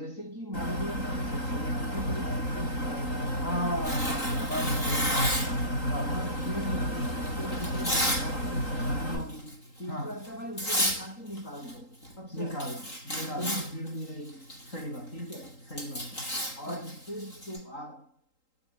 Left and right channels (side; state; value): right; late; 3.8 ms